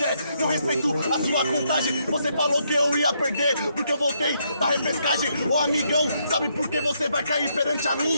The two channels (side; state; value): both; inverted; correlation -0.75